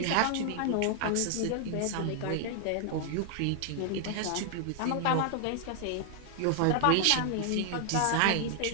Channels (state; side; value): different; both; correlation 0.00